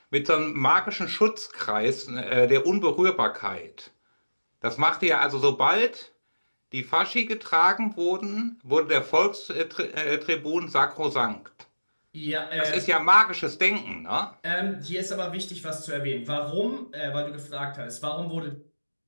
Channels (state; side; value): inverted; both; correlation -1.00